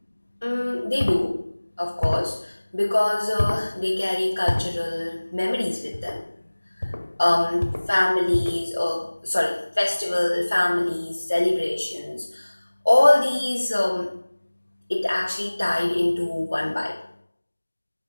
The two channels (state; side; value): inverted; both; correlation -1.00